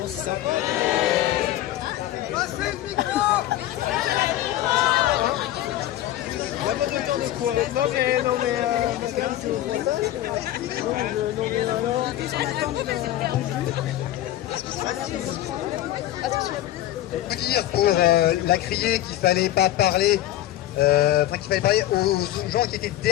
c'est sympa. Passez le micro. Il n'y a pas de temps de quoi. Non mais madame, c'est pour ça. Non mais alors. Vous dire pour la crier qu'il fallait pas parler, qu'il fallait parler aux gens qui étaient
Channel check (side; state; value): right; quieter; 13.9 dB